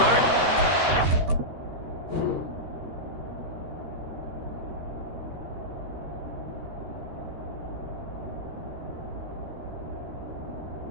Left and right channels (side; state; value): left; late; 13 ms